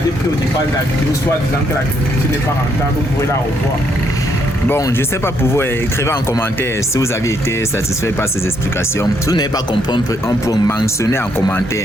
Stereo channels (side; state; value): both; normal; correlation 0.73